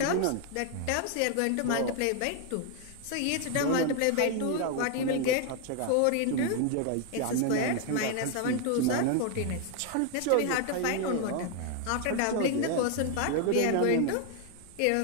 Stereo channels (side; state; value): both; different; correlation 0.01